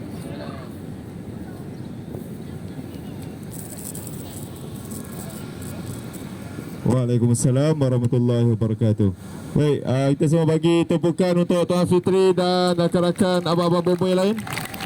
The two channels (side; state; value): both; identical; correlation 1.00